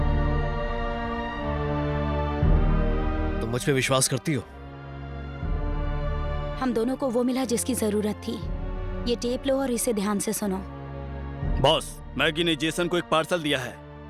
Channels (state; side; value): identical; both; correlation 1.00